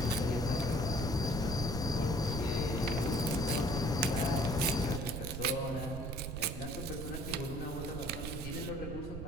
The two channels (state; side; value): noise; right; rumble, 7 dB below the sound